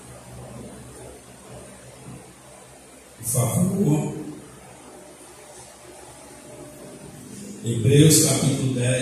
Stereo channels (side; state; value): both; identical; correlation 1.00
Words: Por favor. Hebreus capítulo